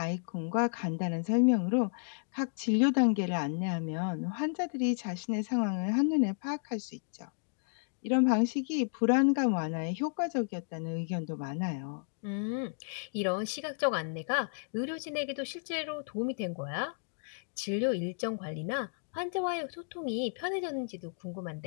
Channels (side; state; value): right; silent; digital silence